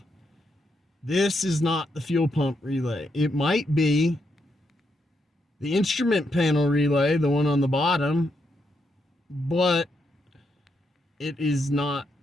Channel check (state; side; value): normal; both; correlation 0.80